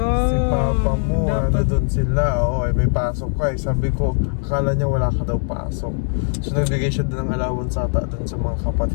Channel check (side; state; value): right; silent; 64 dB below the other